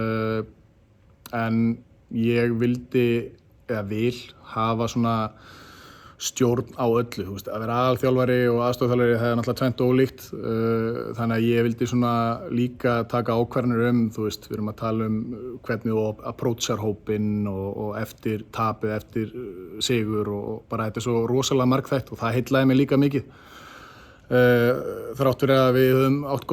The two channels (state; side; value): identical; both; correlation 1.00